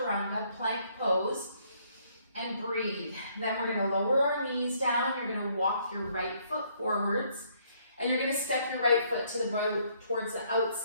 plank pose, and breathe. Then we're going to lower our knees down. You're going to walk your right foot forwards, and you're going to step your right foot to the right towards the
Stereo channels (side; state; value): both; inverted; correlation -0.67